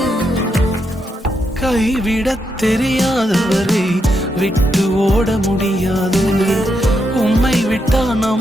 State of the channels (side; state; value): both; normal; correlation 0.82